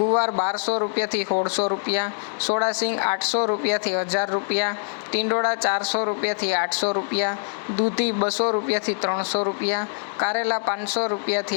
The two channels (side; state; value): right; silent; digital silence